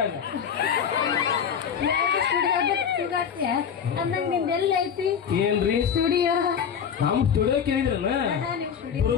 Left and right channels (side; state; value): right; quieter; 7.5 dB